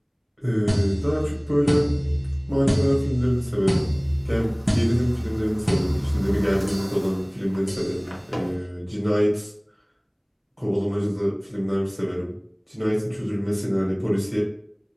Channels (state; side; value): identical; both; correlation 1.00